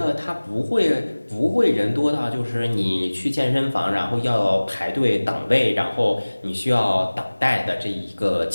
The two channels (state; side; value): inverted; both; correlation -1.00